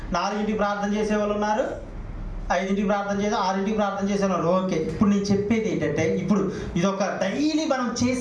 4ంటికి ప్రార్థన చేసేవాళ్ళు ఉన్నారు, 5ంటికి ప్రార్థన చేసి 6ంటికి ప్రార్థన చేసేవాళ్ళు. ఓకే, ఇప్పుడు నేను చెప్పేది ఏంటంటే, ఇప్పుడు ఇదొక డైలీ మనం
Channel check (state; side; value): identical; both; correlation 1.00